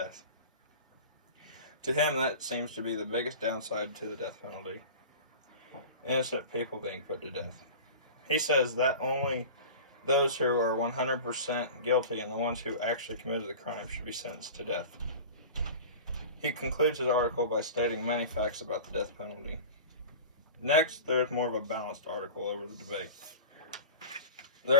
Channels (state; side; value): inverted; both; correlation -0.34